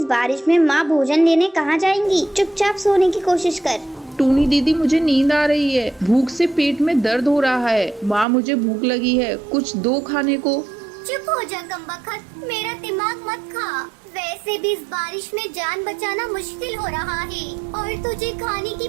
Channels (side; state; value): left; drops out; at 8.2 s